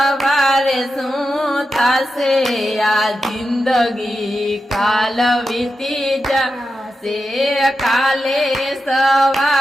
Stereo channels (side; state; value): both; normal; correlation 0.89